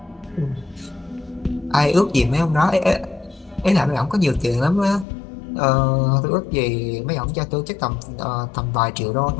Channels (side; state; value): right; drops out; at 5.1 s